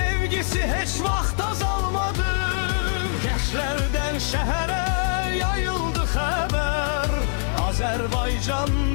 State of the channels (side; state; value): right; silent; digital silence